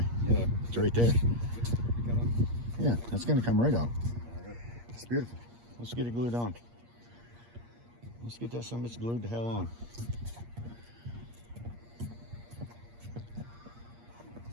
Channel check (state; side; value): late; left; 8.5 ms